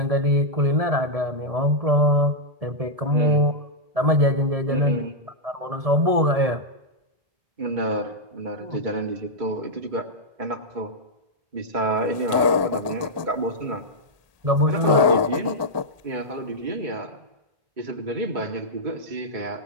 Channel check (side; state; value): left; late; 1.2 ms